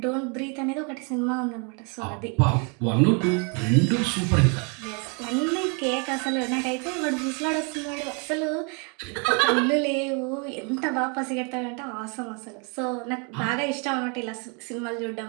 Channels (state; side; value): quieter; left; 35.5 dB